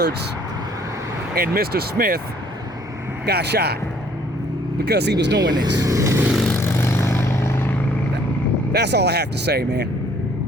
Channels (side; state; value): both; normal; correlation 0.61